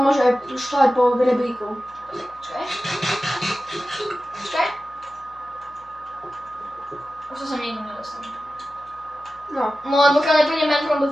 môže aj šľať po rebríku. Počkaj. Počkaj. Už to som nikdy nedostal. No. No len pokiaľ nepríde Man from the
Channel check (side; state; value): left; noise; hum, 28 dB below the sound